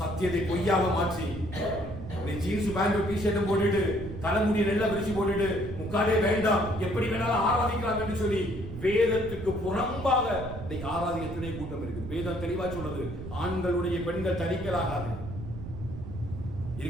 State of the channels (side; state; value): right; noise; rumble, 10 dB below the sound